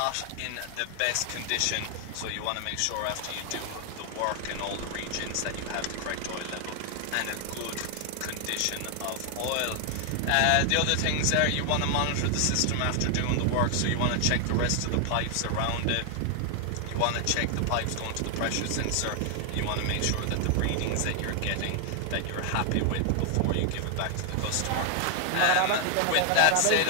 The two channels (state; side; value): different; both; correlation 0.00